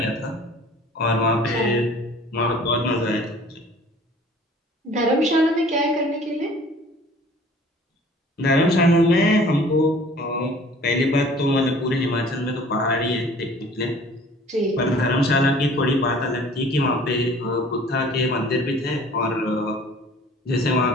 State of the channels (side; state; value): both; normal; correlation 0.50